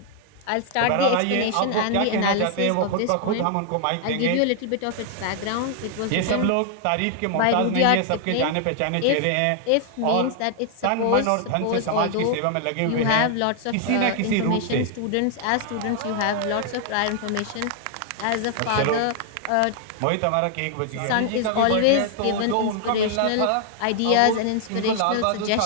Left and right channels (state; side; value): different; both; correlation 0.00